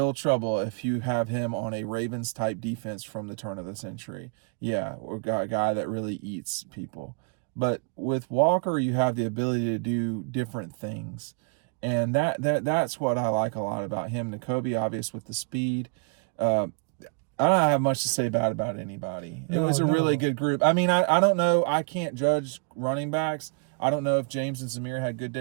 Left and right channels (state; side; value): quieter; left; 37.8 dB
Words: trouble if you have him on a Ravens-type defense from the turn of the century. Yeah, or a guy that really eats people. But with Walker, you have the ability to do different things. And that's what I like a lot about him. Nakobe, obvious with the speed. I don't have much to say bad about anybody. It was a really good group. I mean, I don't know. I can't judge running backs. I don't know if James and Zamir had good